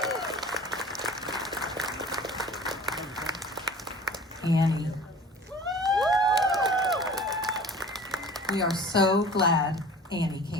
Annie. We are so glad Annie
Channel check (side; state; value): both; normal; correlation 0.43